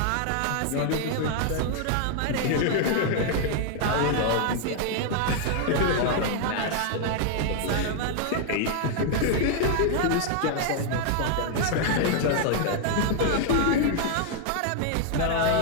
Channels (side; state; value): both; different; correlation 0.00